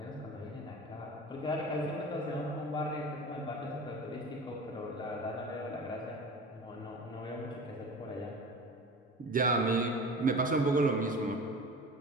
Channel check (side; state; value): both; normal; correlation 0.36